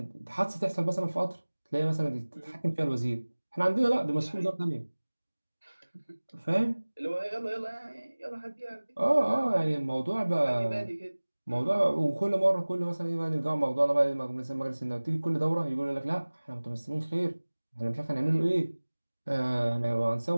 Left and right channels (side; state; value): both; inverted; correlation -1.00